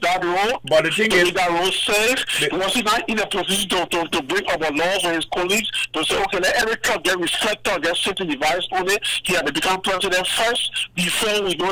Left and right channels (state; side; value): identical; both; correlation 1.00